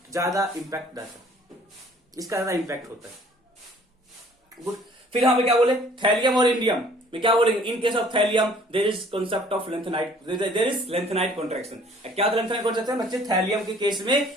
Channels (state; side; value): normal; both; correlation 0.56